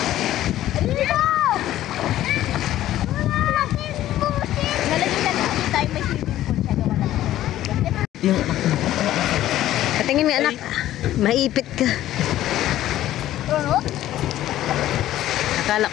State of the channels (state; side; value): quieter; right; 13.6 dB